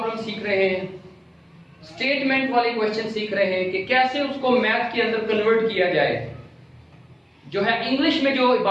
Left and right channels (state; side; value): identical; both; correlation 1.00